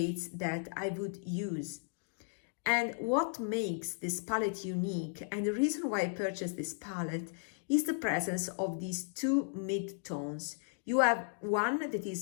that I would use. And what makes this palette unique, and the reason why I purchased this palette, is the presence of these two mid-tones. You have one that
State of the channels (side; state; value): right; silent; digital silence